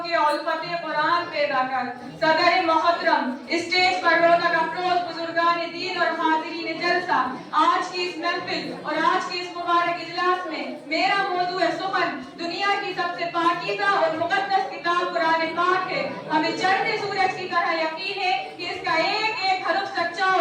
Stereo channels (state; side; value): identical; both; correlation 1.00